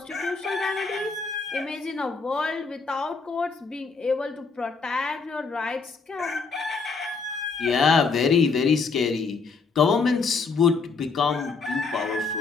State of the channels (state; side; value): quieter; right; 4.7 dB